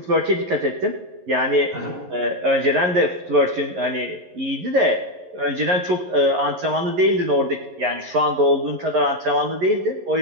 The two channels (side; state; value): left; late; 11 ms